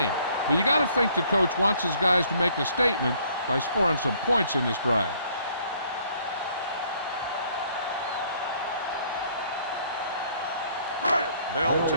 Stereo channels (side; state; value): both; inverted; correlation -0.62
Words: but you got to think the coach wants his guys to make a statement by scoring some points in this drive. They'll